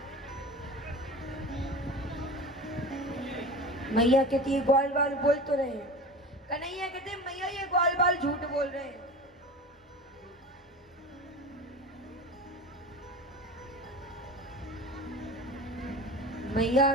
मैया कहती है ग्वाल बाल बोल तो रहे हैं कन्हैया कहते हैं मैया ये ग्वाल बाल झूठ बोल रहे हैं मैया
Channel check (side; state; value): both; normal; correlation 0.33